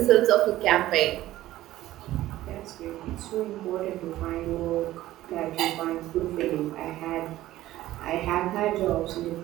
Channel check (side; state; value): left; quieter; 15.1 dB